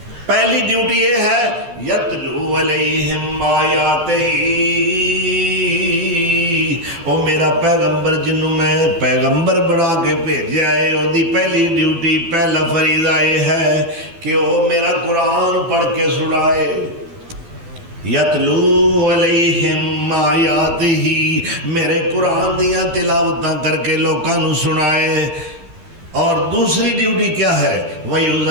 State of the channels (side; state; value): left; late; 12 ms